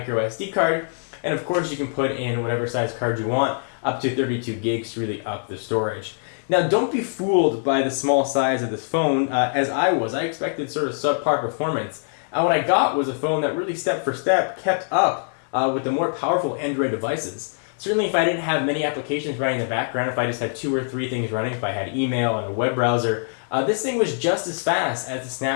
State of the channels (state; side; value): silent; right; digital silence